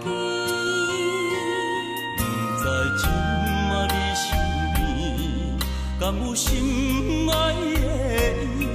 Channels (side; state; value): both; identical; correlation 1.00